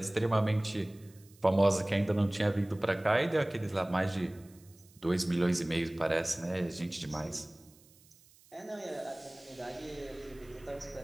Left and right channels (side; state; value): right; noise; hiss, 27 dB below the sound